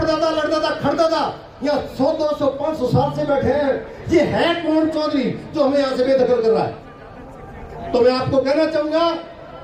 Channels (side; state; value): both; identical; correlation 1.00